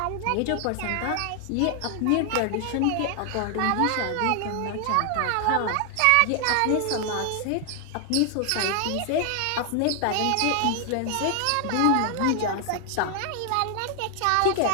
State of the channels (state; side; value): different; both; correlation 0.00